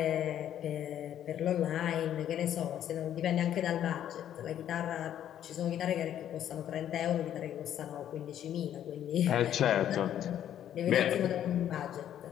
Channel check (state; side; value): quieter; right; 10.7 dB